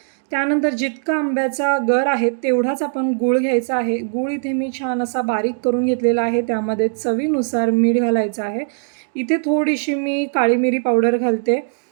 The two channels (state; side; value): silent; left; digital silence